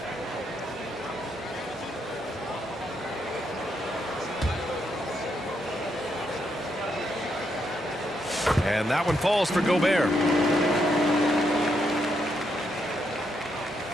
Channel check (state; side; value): normal; both; correlation 0.79